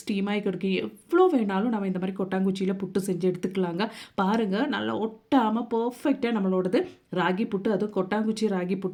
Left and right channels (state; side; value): identical; both; correlation 1.00